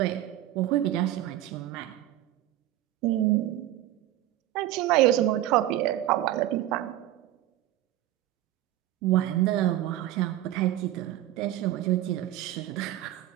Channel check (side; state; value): left; quieter; 13.8 dB